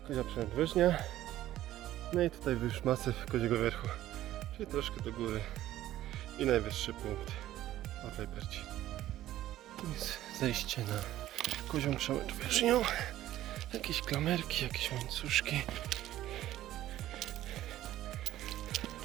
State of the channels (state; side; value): quieter; left; 13.8 dB